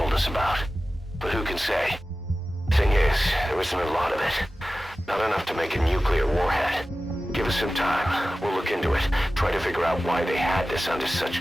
us about. But who can say? Thing is, there isn't a lot of it. Not enough to make a nuclear warhead. Give us some time. We'll look into it. Try to figure out why they had this under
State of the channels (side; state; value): both; normal; correlation 0.95